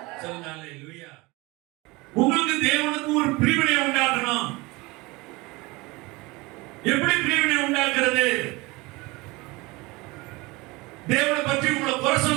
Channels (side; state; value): left; quieter; 23.4 dB